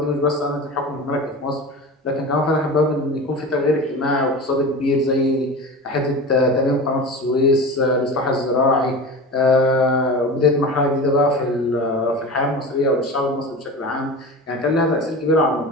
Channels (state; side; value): normal; both; correlation 0.31